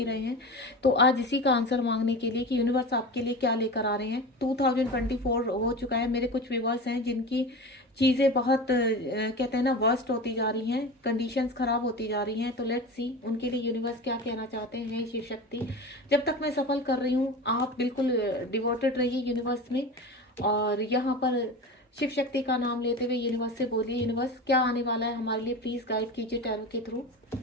रहे हैं। तो आज इसी का आंसर मांगने के लिए कि यूनिवर्स आपके लिए क्या लेकर आ रहे हैं। 2024 हो चुका है। मेरे कुछ व्यूवर्स हैं जिनकी चीज़ें बहुत कहते हैं ना वर्स्ट होती जा रही हैं, कंडीशंस खराब होती जा रही हैं। तो लेट्स सी उनके लिए यूनिवर्स क्या कहना चाहते हैं। शिव शक्ति, जब तक मैं सफल कर रही हूँ आप बिल्कुल डिवोटेड रहिए यूनिवर्स में। और यहाँ पर शिव शक्ति का नाम लेते हुए यूनिवर्स से बोलिए, यूनिवर्स क्या आने वाला है हमारे लिए, प्लीज गाइड कीजिए टैरो के थ्रू।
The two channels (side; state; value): both; normal; correlation 0.29